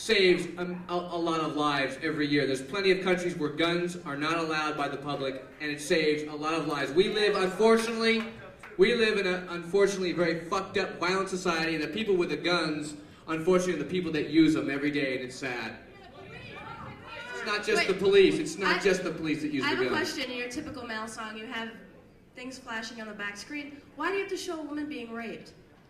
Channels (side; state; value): both; identical; correlation 1.00